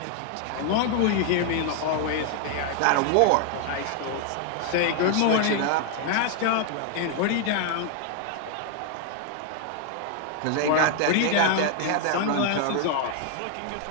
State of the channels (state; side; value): different; both; correlation 0.00